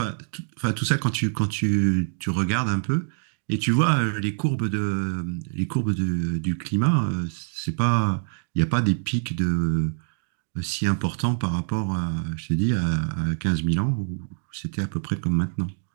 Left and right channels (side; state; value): left; silent; digital silence